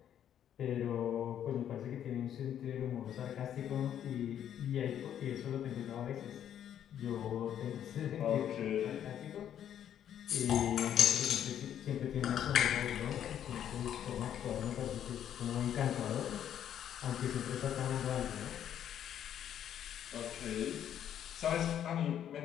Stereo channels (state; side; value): quieter; right; 10.0 dB